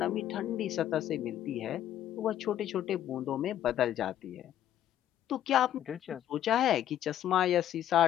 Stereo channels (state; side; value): quieter; right; 11.4 dB